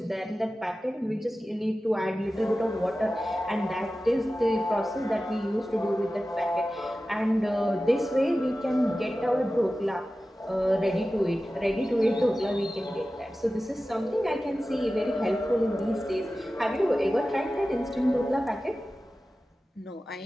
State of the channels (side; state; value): both; normal; correlation 0.95